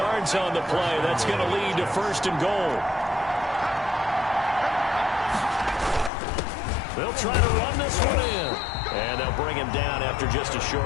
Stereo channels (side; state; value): right; drops out; at 6.1 s